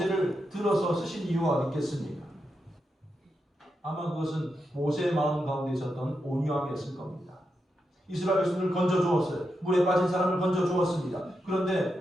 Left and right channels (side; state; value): both; normal; correlation 0.86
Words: 들어서 쓰신 이유가 어디 있겠습니까? 아마 그것은 모세의 마음 가운데 있었던 온유함이었을 겁니다. 이스라엘 백성들을 건져주었어요. 물에 빠진 사람을 건져주었습니다.